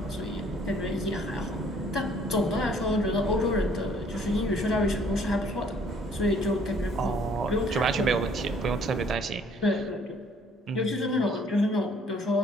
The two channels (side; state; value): both; normal; correlation 0.60